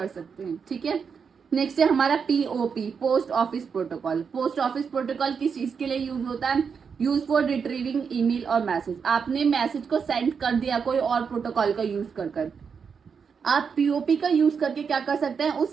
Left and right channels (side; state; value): left; quieter; 6.2 dB